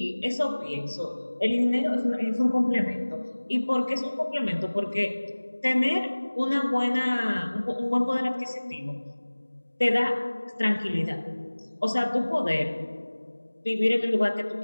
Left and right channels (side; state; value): both; inverted; correlation -1.00